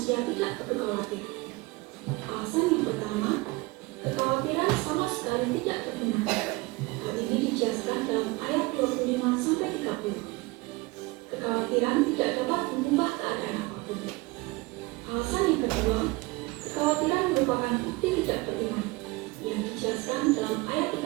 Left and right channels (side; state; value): left; quieter; 23.3 dB